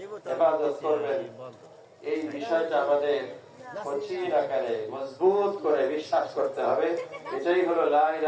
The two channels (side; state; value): both; identical; correlation 1.00